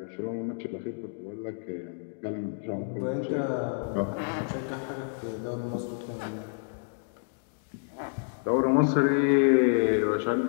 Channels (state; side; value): silent; right; digital silence